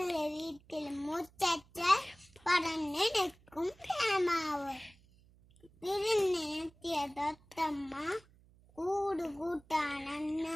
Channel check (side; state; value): right; noise; hum, 28 dB below the sound